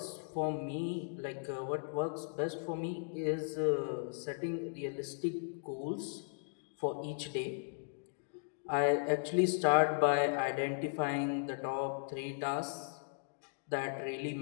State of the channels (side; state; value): right; silent; digital silence